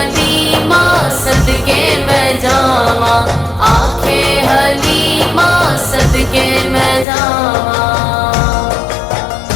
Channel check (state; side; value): drops out; right; at 7.1 s